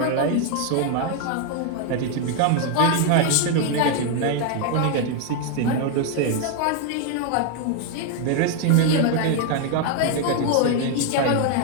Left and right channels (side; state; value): both; different; correlation 0.00